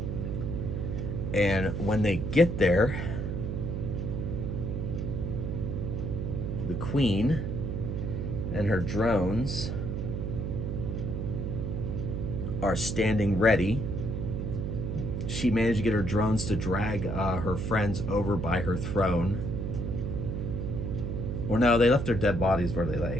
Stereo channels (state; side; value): noise; right; hum, 2 dB below the sound